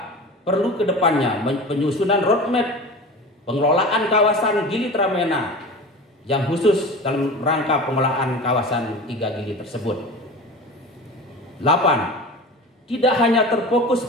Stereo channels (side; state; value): both; normal; correlation 0.34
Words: perlu kedepannya penyusunan roadmap pengelolaan kawasan Gili Tramena yang khusus dalam rangka pengelolaan kawasan 3 Gili tersebut. 8. Tidak hanya terfokus